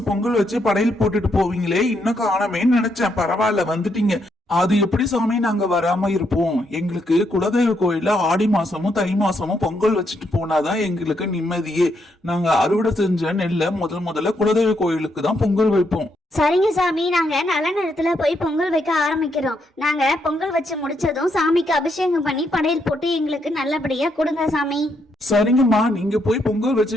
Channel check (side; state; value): both; normal; correlation 0.77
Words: பொங்கல் வச்சு படையல் போட்டுட்டு போவீங்களே, இன்னும் காணமேன்னு நினைச்சேன். பரவாயில்ல, வந்துட்டீங்க. அது எப்படி சாமி நாங்க வராம இருப்போம்? எங்களுக்கு குலதெய்வ கோயில ஆடி மாசமும் தை மாசமும் பொங்கல் வச்சுட்டு போனாதான் எங்களுக்கு நிம்மதியே. நாங்க அறுவடை செஞ்ச நெல்ல முதல்ல குலதெய்வ கோயிலுக்கு தான் பொங்கல் வைப்போம். சரிங்க சாமி, நாங்க நல்ல நேரத்துல போய் பொங்கல் வைக்க ஆரம்பிக்கிறோம். நாங்க பொங்கல் வச்சு முடிச்சதும் சாமிக்கு அபிஷேகம் பண்ணி படையல் போட்டு எங்களுக்கு நல்லபடியா கொடுங்க சாமி. சரிங்கம்மா, நீங்க போய் பொங்கல்